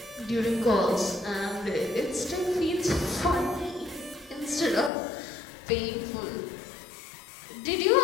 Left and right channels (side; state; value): right; drops out; at 4.9 s